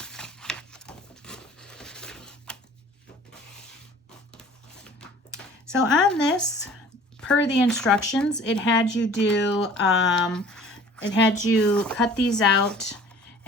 So on this, per the instructions, it had you do, it had you cut these out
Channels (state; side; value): normal; both; correlation 0.48